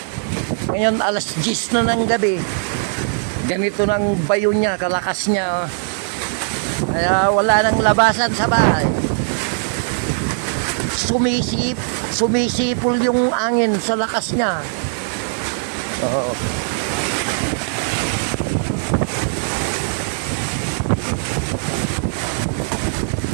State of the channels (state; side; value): silent; left; digital silence